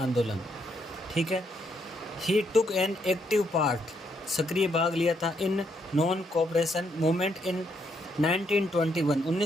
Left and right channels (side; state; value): both; normal; correlation 0.75